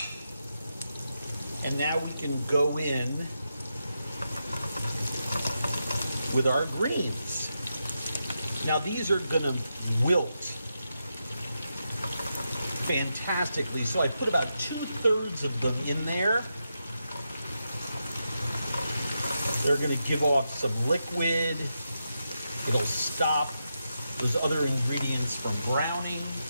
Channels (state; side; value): inverted; both; correlation -0.86